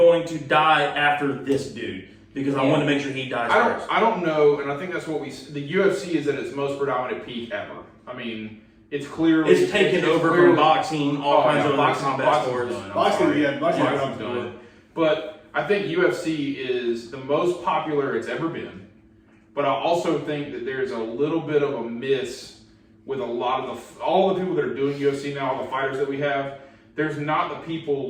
to die after this dude because I want to make sure he dies first. I don't know, and I think that's what the UFC is at its most predominant peak ever. I mean, it's clearly It's taken over from boxing, all kinds of other combat sports. Boxing's done. But I think UFC is the most popular it's ever been. But I also think that there's a little bit of a miss with a lot of all the people that are doing UFC now, all the fighters that we have. There's not the people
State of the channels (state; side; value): identical; both; correlation 1.00